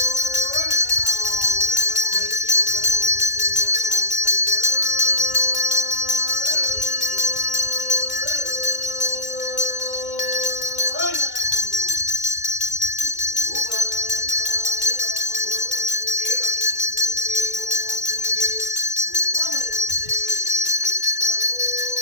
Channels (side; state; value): right; late; 2.1 ms